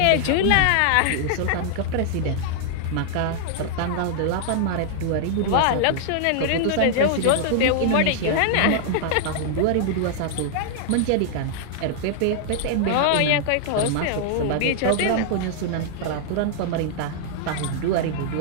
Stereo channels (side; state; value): both; different; correlation -0.01